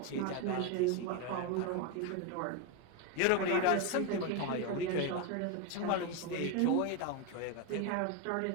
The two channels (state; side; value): different; both; correlation 0.02